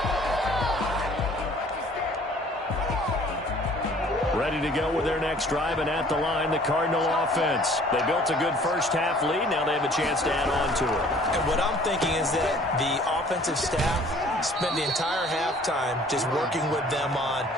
Ready to go with their next drive, and at the line, the Cardinal offense. They built a good first half lead. Now they have a chance to add on to it. And what I'm thinking is that the offensive staff spent the entire halftime just working with them on,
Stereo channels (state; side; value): normal; both; correlation 0.54